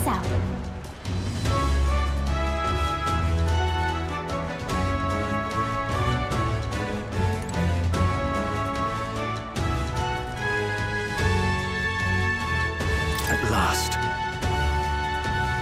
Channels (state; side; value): identical; both; correlation 1.00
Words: out. At last.